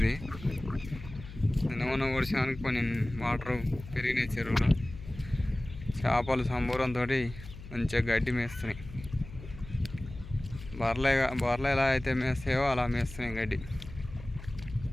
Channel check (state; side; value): noise; left; hum, 14 dB below the sound